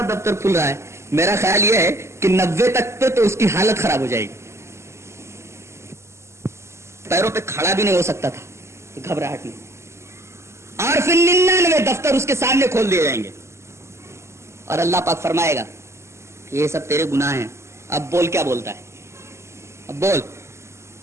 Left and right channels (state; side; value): late; left; 0.13 ms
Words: دفتر کھل رہا ہے. میرا خیال یہ ہے کہ 90 تک پہ تو اس کی حالت خراب ہو جائے گی، پیروں پہ کھڑا بھی نہیں ہو سکتا تھا گھبراہٹ میں. اور پھر 99 دفتر اس کے سامنے کھول دیے جائیں گے اور اللہ پاک فرمائے گا یہ سب تیرے گناہ ہیں، اب بول کیا بولتا ہے، اب بول